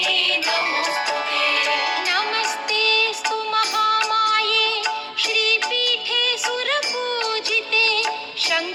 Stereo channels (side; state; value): both; identical; correlation 1.00